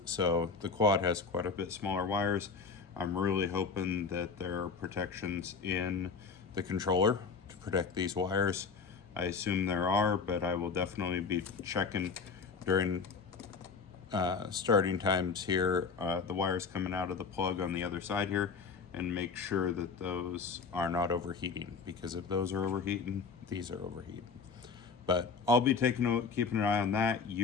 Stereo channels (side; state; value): right; quieter; 5.1 dB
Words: So the quad has quite a bit smaller wires. I'm really hoping that there are protections in the controller to protect these wires. I assume there are, but I will definitely be checking during starting times here, the wires coming out of the plug on the other side here, and make sure that those are not overheating, because if those are overheating, these are overheating. But I'll be keeping an eye on that.